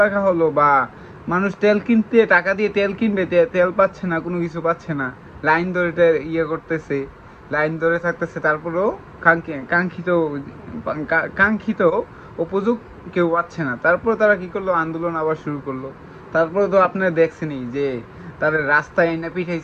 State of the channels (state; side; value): identical; both; correlation 1.00